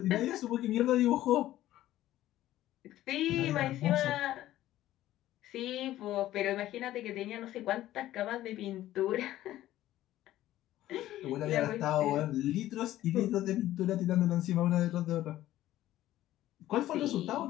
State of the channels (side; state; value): right; quieter; 14.2 dB